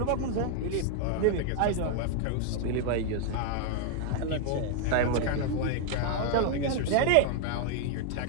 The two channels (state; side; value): different; both; correlation 0.00